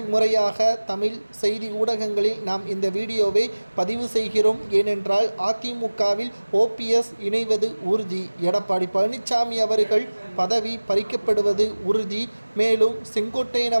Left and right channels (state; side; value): inverted; both; correlation -1.00